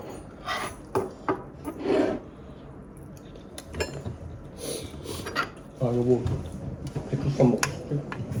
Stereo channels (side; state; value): both; identical; correlation 1.00